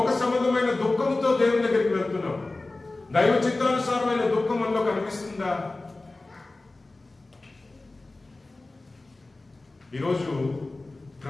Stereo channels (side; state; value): right; quieter; 3.1 dB